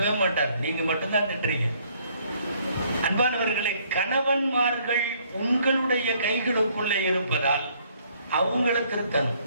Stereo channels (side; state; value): both; inverted; correlation -0.64